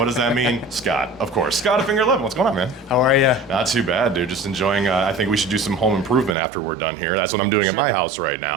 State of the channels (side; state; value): left; drops out; at 6.4 s